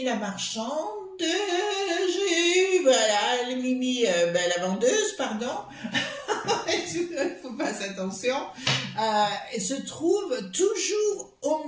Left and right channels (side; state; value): both; identical; correlation 1.00